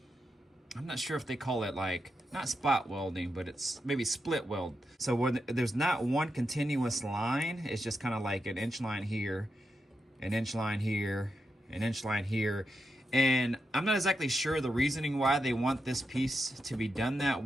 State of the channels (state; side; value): normal; both; correlation 0.86